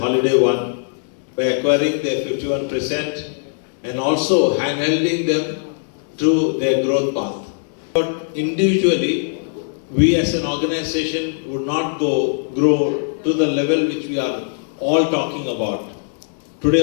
Holiday One, by acquiring their 51% and also handholding them through their growth path. But individually, we as an organization would not grow to the level which we are all talking about. Today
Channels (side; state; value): right; silent; digital silence